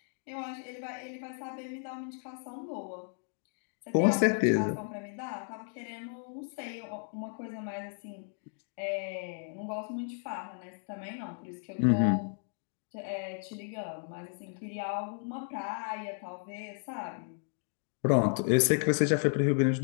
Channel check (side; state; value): right; silent; 55 dB below the other